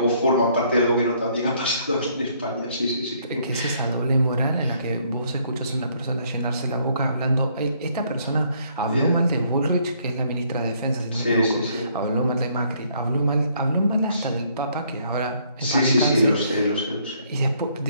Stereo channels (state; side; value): inverted; both; correlation -0.66